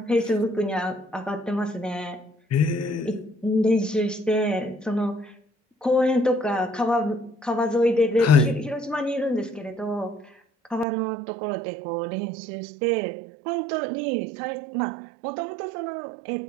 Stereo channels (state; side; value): drops out; left; at 10.9 s